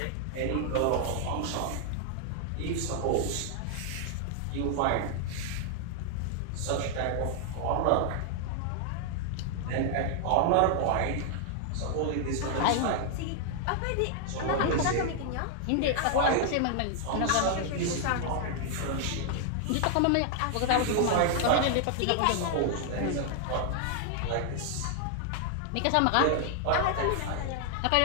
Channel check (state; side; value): different; both; correlation 0.00